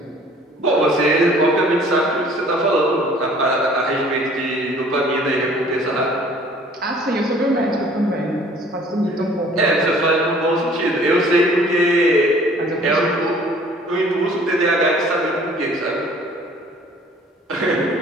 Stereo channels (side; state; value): both; normal; correlation 0.53